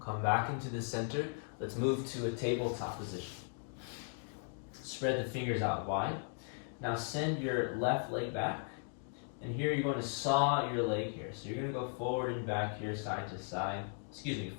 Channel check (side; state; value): right; silent; 53 dB below the other